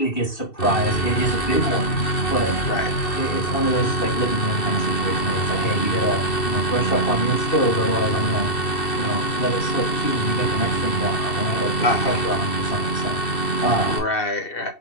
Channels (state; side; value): late; right; 2.7 ms